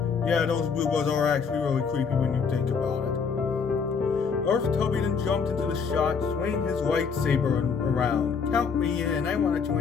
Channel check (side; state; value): right; quieter; 5.8 dB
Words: Yeah, those Boohbahs are actually really creepy when you think about it. Darth Tubby then jumped into the shot, swinging his lightsaber around. Count me in. I want to